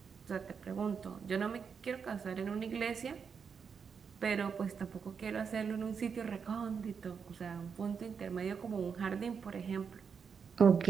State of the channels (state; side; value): quieter; left; 6.3 dB